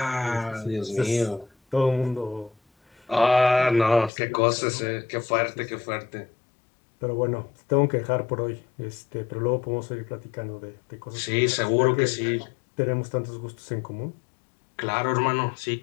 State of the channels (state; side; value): drops out; right; at 4.1 s